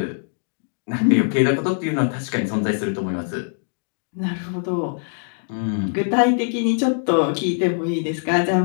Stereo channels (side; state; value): right; silent; 64 dB below the other